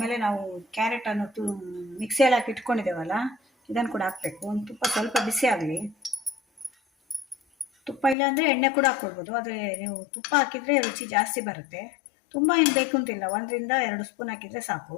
ನಾವು ಕ್ಯಾರೆಟನ್ನು ಮಿಕ್ಸಿಯಲ್ಲಿ ಹಾಕಿ ಇಟ್ಕೊಂಡಿದ್ದೇವಲ್ಲ, ಇದನ್ನು ಕೂಡ ಹಾಕಬೇಕು. ಒಂದು ತುಪ್ಪ ಸ್ವಲ್ಪ ಬಿಸಿ ಆಗಲಿ. ತುಪ್ಪ ಇಲ್ಲ ಅಂದರೆ ಎಣ್ಣೆ ಕೂಡ ಹಾಕ್ಕೊಳ್ಬೋದು. ಆದರೆ ನೀವು ತುಪ್ಪ ಹಾಕಿದರೆ ರುಚಿ ಜಾಸ್ತಿ ಬರುತ್ತೆ. ತುಂಬ ಏನು ಬೇಕು ಅಂತಿಲ್ಲ, 1ರಿಂದ 2 ಸ್ಪೂನ್ ಹಾಕಿದರೆ ಸಾಕು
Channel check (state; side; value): drops out; right; at 8.2 s